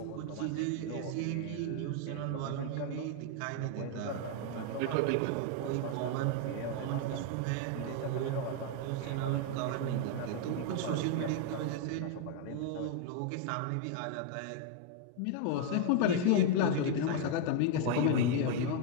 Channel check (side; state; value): both; different; correlation 0.00